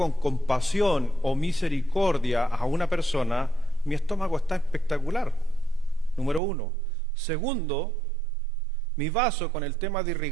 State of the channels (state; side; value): drops out; left; at 6.4 s